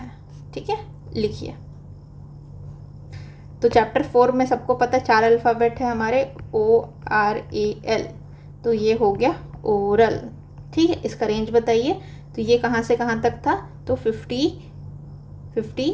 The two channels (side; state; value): both; identical; correlation 1.00